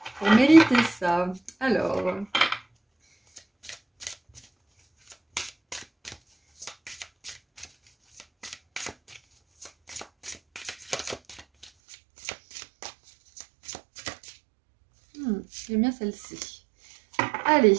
pour mériter ça? Alors... j'aime bien celle-ci. Allez,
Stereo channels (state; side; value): drops out; left; at 11.7 s